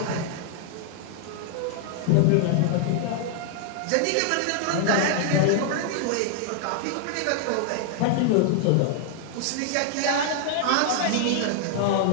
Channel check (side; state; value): both; different; correlation 0.00